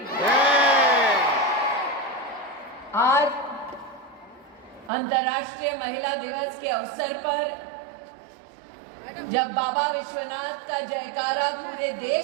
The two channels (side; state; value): left; drops out; at 4.9 s